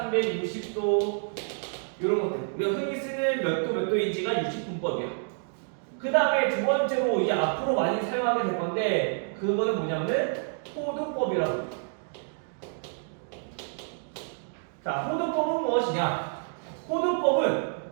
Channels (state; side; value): silent; left; digital silence